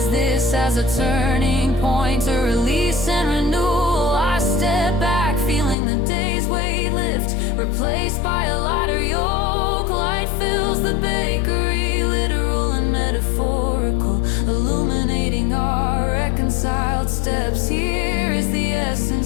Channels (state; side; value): drops out; right; at 5.8 s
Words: this as a turning point, a release and renewal. I step back, feeling the day's weight lift, replaced by a lighter yoke. Light fills the bakery, literal and metaphorical, illuminating our reconciled steps. Here is the